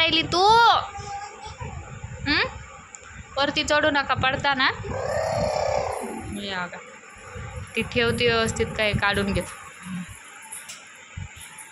तू? वरती चढू नका, पडता ना. या का ती ठेवती व्यवस्थित, काय काढून घेत.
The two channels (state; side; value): identical; both; correlation 1.00